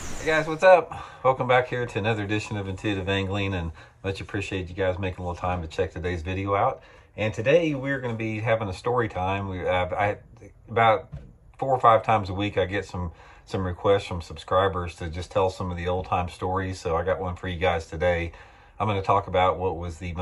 Guys, what's up? Welcome back here to another edition of Intuitive Angling, and much appreciate you guys making a little time to check today's video out. And today we're going to be having a story time. About 4 or 5 times a week I get some requests from subscribers to just tell some of the old time stories. So I got one for you guys today. I'm going to talk about what was the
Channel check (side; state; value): both; identical; correlation 1.00